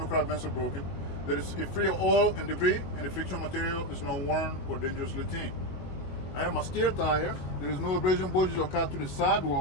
crack bands are broken. There is free of oil and debris, and the friction material is not worn or dangerously thin. I have my steer tire. There is no abrasion bulges or cut to the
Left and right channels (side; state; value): right; late; 22 ms